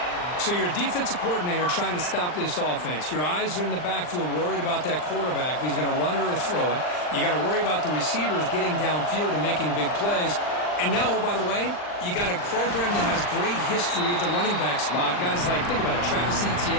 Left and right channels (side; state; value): right; late; 39 ms